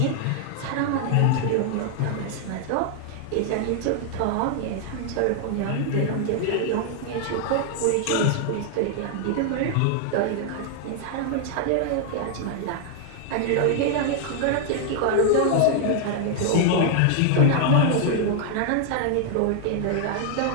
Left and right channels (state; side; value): different; both; correlation 0.00